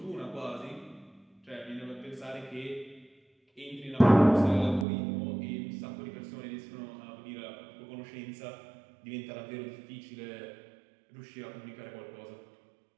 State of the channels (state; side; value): drops out; left; at 4.9 s